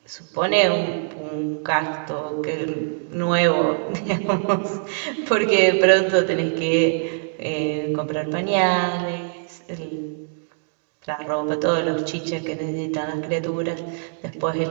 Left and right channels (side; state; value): left; silent; 63 dB below the other